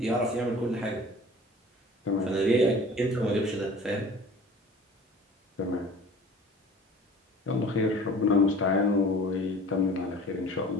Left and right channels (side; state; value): both; normal; correlation 0.44